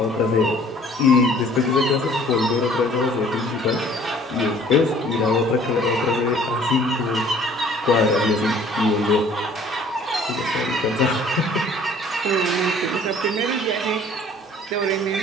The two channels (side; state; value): both; normal; correlation 0.54